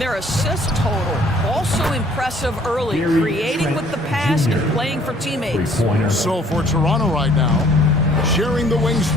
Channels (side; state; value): both; normal; correlation 0.58